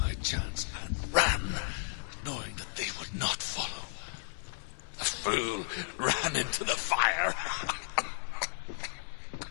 chance and ran, knowing that they would not follow. The fool ran into the fire.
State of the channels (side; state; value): right; silent; 55 dB below the other